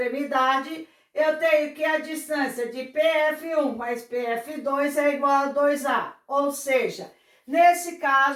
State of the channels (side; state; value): both; identical; correlation 1.00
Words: eu tenho que a distância de PF1 mais PF2 é igual a 2A. Ou seja, nesse